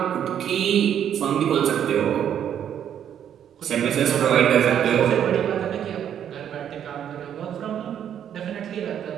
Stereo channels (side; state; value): left; quieter; 9.5 dB